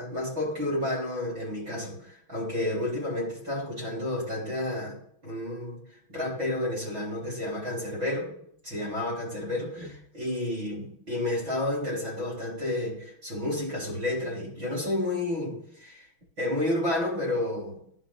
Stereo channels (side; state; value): left; late; 6.1 ms